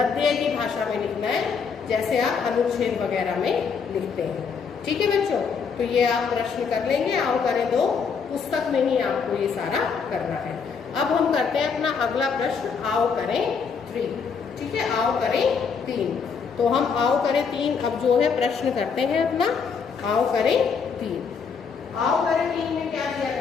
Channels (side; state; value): right; quieter; 5.9 dB